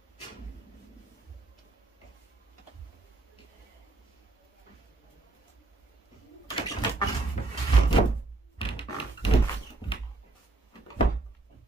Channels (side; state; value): left; quieter; 3.3 dB